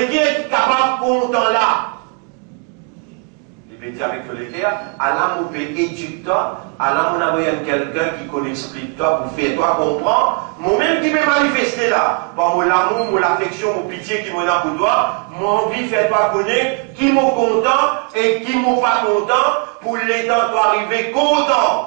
guerres qui sont capables de content là. Il peut dire avec tous les guerres, Allah, mon peut éduquer toi, Allah, mon envoyé quelqu'un qui connaît, explique toi, pour faire toi comprendre. Moi-même qui peut manifester là, par mon amour, mon affection, mon pitié qui m'en a pour toi, mon envie de faire toi connaître qui m'ont content et qui m'ont pas content, pour les temps toi arriver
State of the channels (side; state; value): left; quieter; 36.2 dB